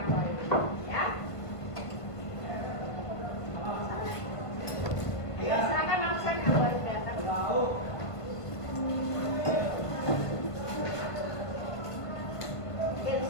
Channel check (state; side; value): late; right; 1.5 ms